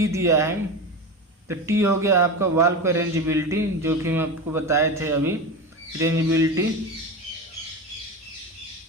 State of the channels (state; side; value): normal; both; correlation 0.23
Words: दिया है, तो T हो गया आपका वाल्व का रेंजेबिलिटी, जो कि हम आपको बताए थे अभी, रेंजेबिलिटी।